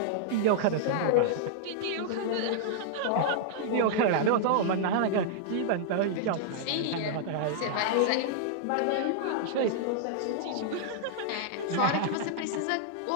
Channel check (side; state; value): both; different; correlation -0.01